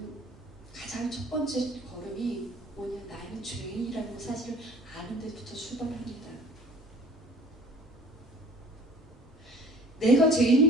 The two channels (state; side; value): normal; both; correlation 0.49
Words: 가장 첫 번째 걸음이 뭐냐? 나는 죄인이라는 사실을 아는 데부터 출발합니다. 내가